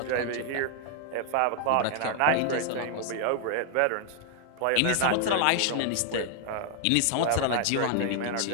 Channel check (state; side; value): different; both; correlation 0.00